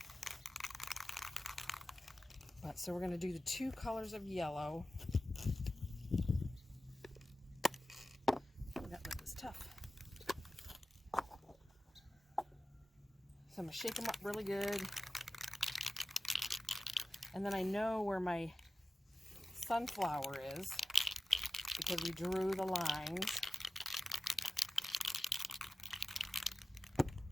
But so we're going to do the two colors of yellow. That lip is tough. So I'm going to shake them up really good. And then I know where my sunflower is, because we drew the lines.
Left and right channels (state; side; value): normal; both; correlation 0.94